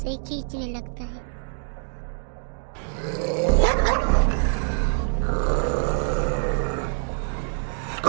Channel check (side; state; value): left; silent; 62 dB below the other